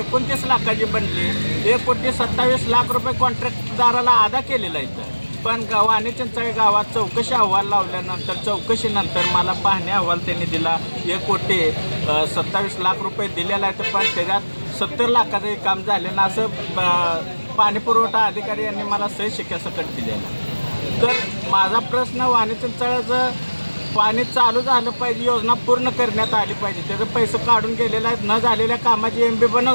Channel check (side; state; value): both; inverted; correlation -1.00